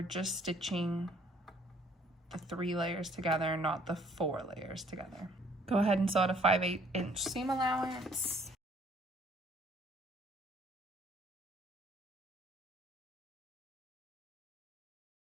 just stitching the 3 layers together, not the 4 layers together. Go ahead and sew at a 5/8 inch seam allowance.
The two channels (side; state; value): both; normal; correlation 0.61